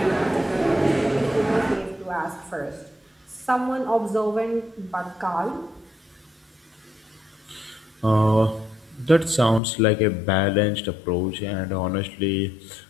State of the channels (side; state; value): right; drops out; at 9.6 s